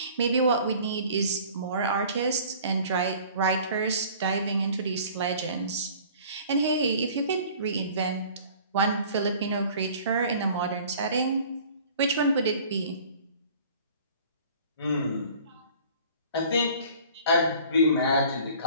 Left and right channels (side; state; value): both; inverted; correlation -0.49